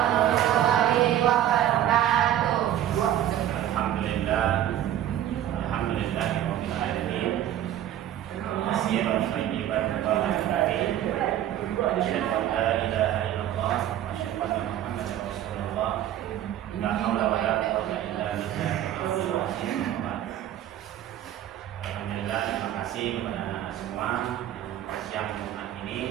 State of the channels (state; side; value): quieter; left; 11.7 dB